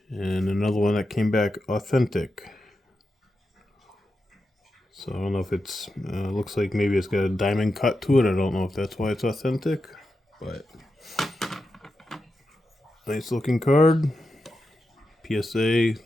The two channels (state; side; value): normal; both; correlation 0.89